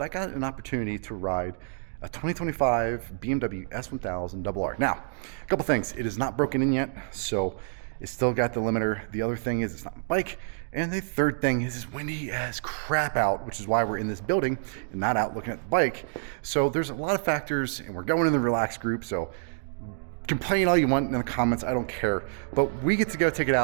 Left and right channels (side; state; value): left; silent; digital silence